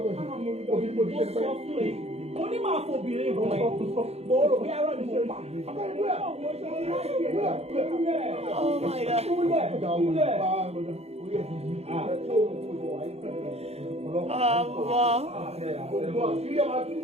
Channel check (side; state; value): left; late; 0.30 ms